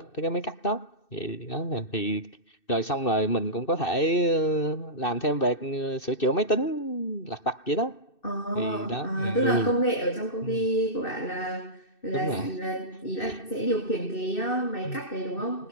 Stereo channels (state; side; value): late; right; 2.6 ms